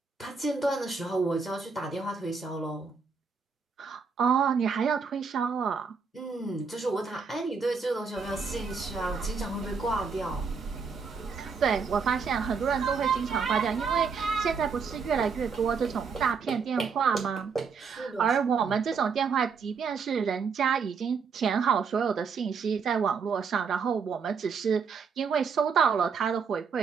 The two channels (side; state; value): left; quieter; 5.5 dB